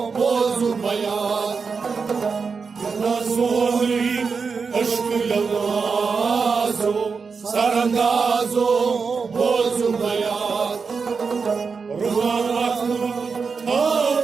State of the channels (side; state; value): left; quieter; 5.2 dB